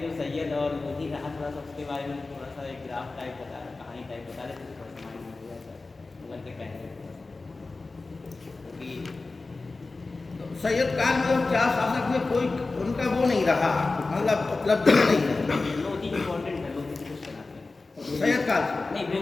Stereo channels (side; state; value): right; quieter; 3.6 dB